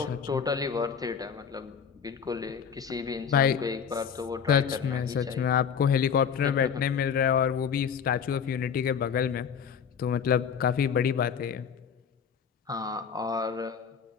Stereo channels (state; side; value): quieter; right; 7.1 dB